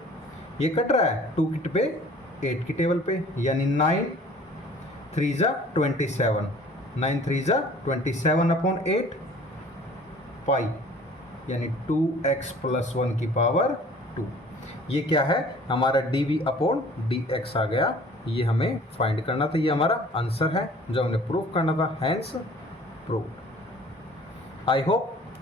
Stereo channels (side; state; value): both; normal; correlation 0.50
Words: ये कट रहा है 2 की पे 8 की टेबल पे, यानी 9 3 = 27। 9 3 = 27/8 पाई, यानी 2x + 1 की पावर 2। ये क्या है? हमारा dv/dx आ गया। ये हमें फाइंड करना था। ये हमारा आंसर है जो हमने प्रूव करना था। Hence proved. आई होप